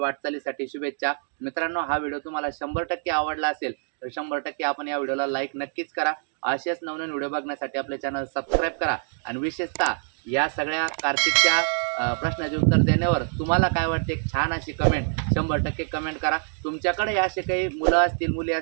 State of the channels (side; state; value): left; silent; digital silence